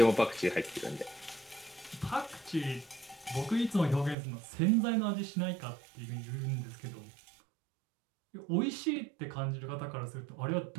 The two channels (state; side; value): drops out; left; at 4.2 s